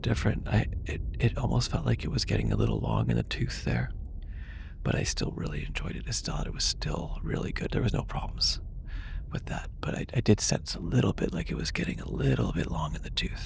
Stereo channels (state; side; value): identical; both; correlation 1.00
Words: different. It almost felt like it was getting a little long in the tooth there, but I still really enjoyed it. I still thought it was still really good. There was no problems with that, but I did sense a little bit like it was getting a little bit long in the